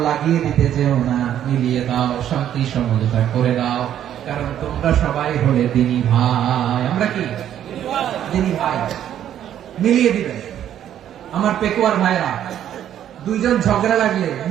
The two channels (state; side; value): quieter; left; 10.6 dB